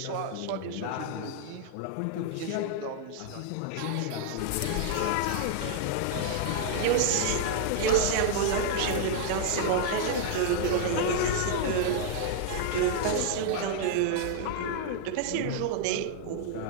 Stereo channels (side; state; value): both; different; correlation -0.01